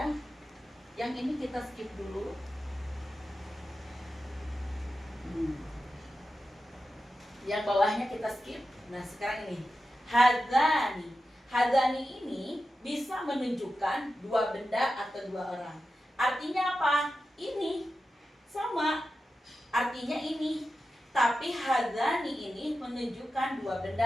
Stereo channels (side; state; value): both; normal; correlation 0.91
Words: Yang ini kita skip dulu. Yang bawahnya kita skip. Nah sekarang ini hadzani. Hadzani ini bisa menunjukkan dua benda atau dua orang. Artinya apa? Ini sama. Artinya ini. Tapi hadzani ini menunjukkan dua